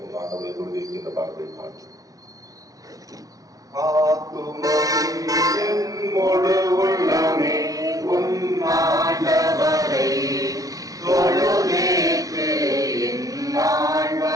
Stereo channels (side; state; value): left; late; 0.17 ms